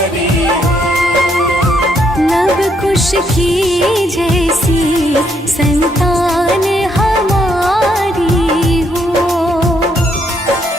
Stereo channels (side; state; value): both; normal; correlation 0.73